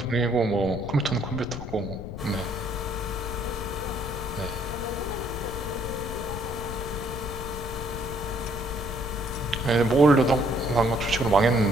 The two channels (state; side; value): noise; left; rumble, 9 dB below the sound